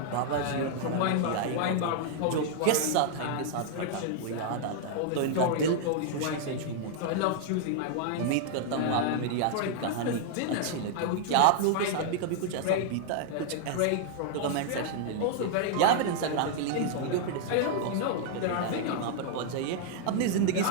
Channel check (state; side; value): different; both; correlation -0.01